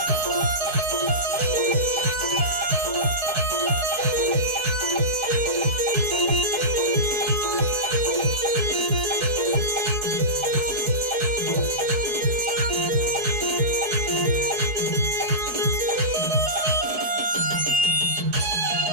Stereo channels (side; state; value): left; late; 4.7 ms